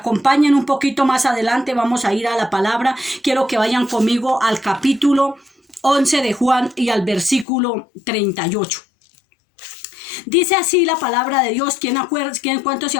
un poquito más adelante, vamos a ir a la palabra. Quiero que vayan conmigo al capítulo 11 de Juan y al versículo 38. Dice así la palabra de Dios. ¿Cuántos se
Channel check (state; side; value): drops out; right; at 7.5 s